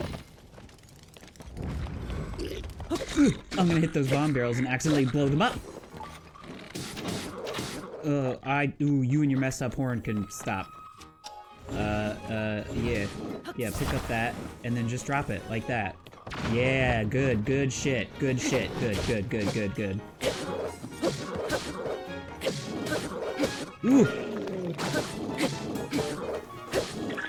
I'm gonna hit those bomb barrels and accidentally blow them up. Ooh, you and your messed up horn can stop. Yeah. Yeah, pick up that, and then just drop it, like that. Yeah, good shit, good, good. Ooh!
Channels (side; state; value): both; identical; correlation 1.00